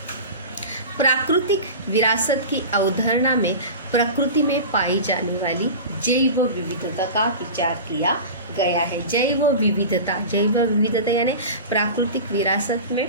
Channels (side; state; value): both; inverted; correlation -0.31